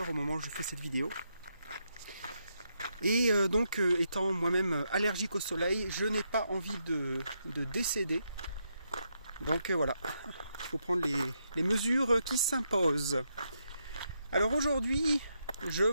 au moment où je fais cette vidéo. Et donc, étant moi-même allergique au soleil, je n'ai pas envie de décéder. Donc voilà, il faut prendre les mesures qui s'imposent. Alors aujourd'hui, je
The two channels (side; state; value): both; inverted; correlation -0.81